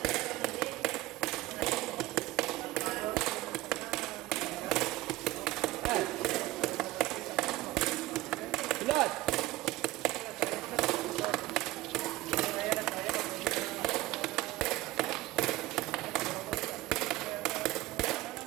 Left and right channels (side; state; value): left; quieter; 17.6 dB